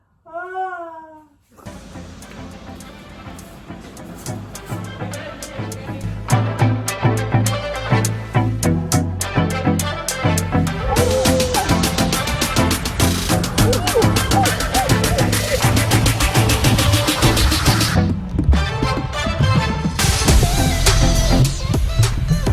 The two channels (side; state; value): both; identical; correlation 1.00